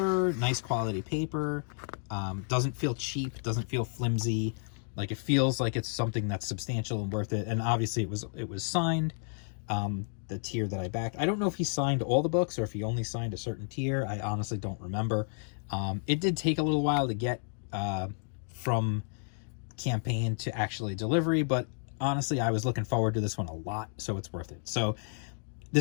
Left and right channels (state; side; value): silent; right; 57 dB below the other